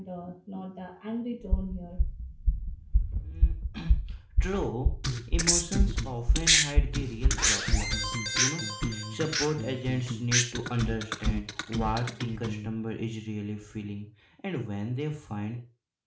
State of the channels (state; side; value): identical; both; correlation 1.00